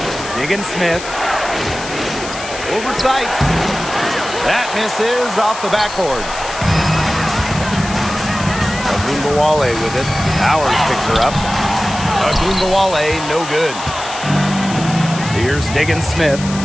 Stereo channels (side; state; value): left; noise; hiss, 11 dB below the sound